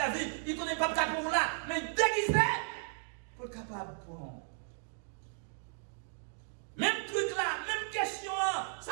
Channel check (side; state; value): left; silent; digital silence